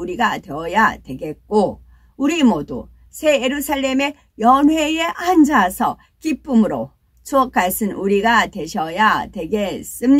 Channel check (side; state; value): both; identical; correlation 1.00